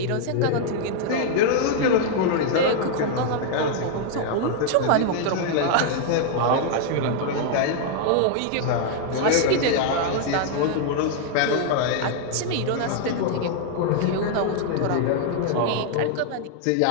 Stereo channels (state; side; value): different; both; correlation 0.00